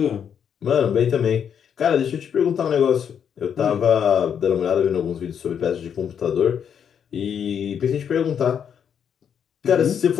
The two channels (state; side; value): quieter; right; 8.0 dB